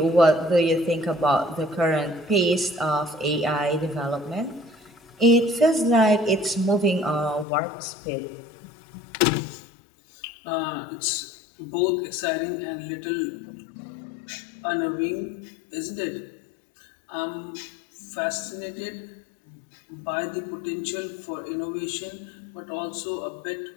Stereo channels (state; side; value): drops out; right; at 7.5 s